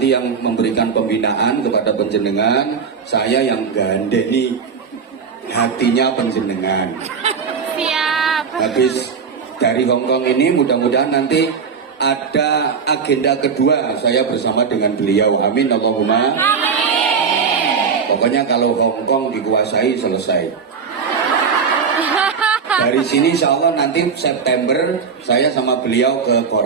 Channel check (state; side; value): quieter; left; 6.0 dB